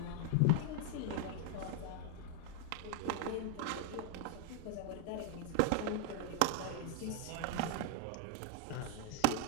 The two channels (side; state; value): both; different; correlation 0.00